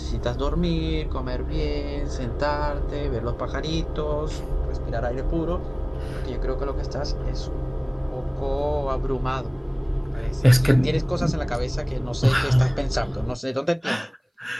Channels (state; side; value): identical; both; correlation 1.00